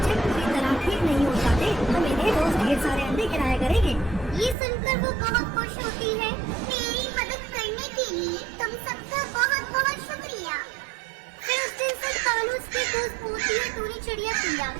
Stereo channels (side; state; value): left; drops out; at 4.5 s